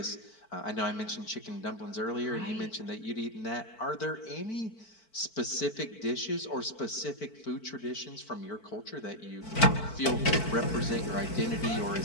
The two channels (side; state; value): right; late; 4.5 ms